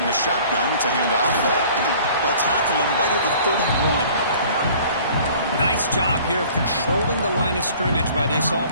The shotgun, it's a handoff. They'll tackle him right at the 31. Nice job here of controlling the line of scrimmage by this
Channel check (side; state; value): both; inverted; correlation -0.51